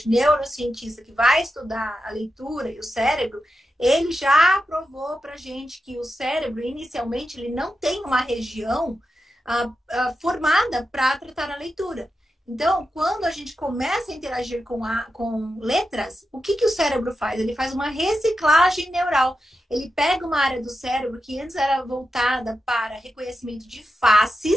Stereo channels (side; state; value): both; normal; correlation 0.89